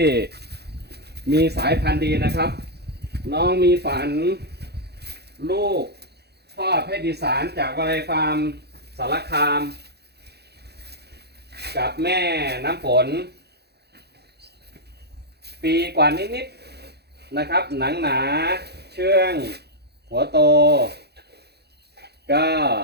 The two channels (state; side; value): late; left; 0.48 ms